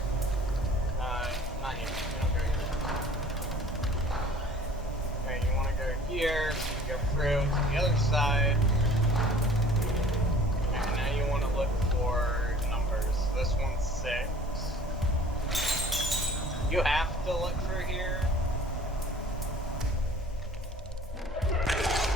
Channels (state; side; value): normal; both; correlation 0.50